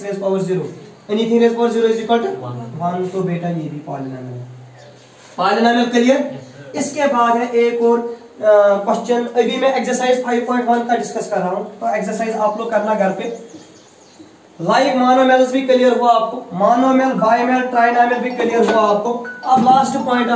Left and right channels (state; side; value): identical; both; correlation 1.00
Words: raise power 0, anything raise power 0 is equal to 1, तो बेटा ये भी पॉलिनोमियल है। Polynomial clear. इसके बाद है एक और क्वेश्चन, अभी मैं एक्सरसाइज 5.1 का डिस्कस कर रहा हूं, तो एक्सरसाइज आप लोग करना घर पे। लाइक मोनोमियल्स भी क्लियर हुआ आपको, मोनोमियल बाइमियल ट्राइनोमियल भी क्लियर हुआ आपको। अब last point